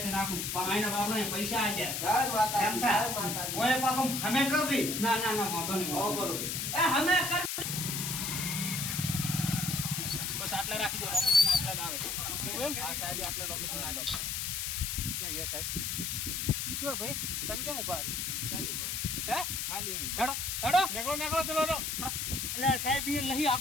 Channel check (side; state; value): left; noise; hiss, 2 dB below the sound